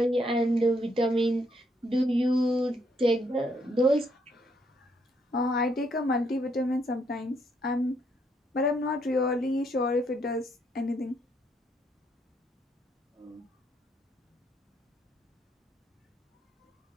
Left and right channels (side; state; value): both; normal; correlation 0.72